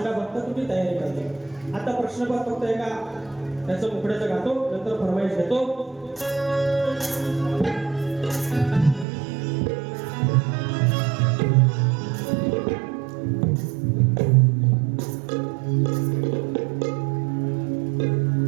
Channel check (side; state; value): left; drops out; at 9.1 s